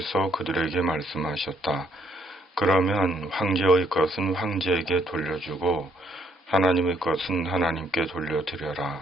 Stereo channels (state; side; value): normal; both; correlation 0.70